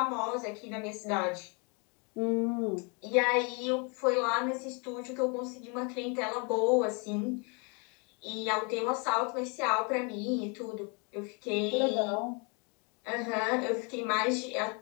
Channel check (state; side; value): quieter; right; 33.9 dB